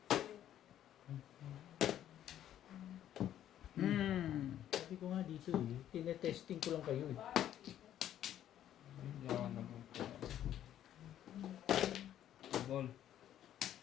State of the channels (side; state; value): right; quieter; 11.3 dB